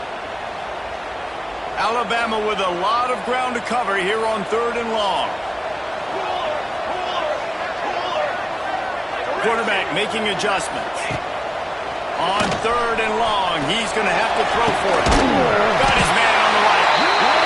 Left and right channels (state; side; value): identical; both; correlation 1.00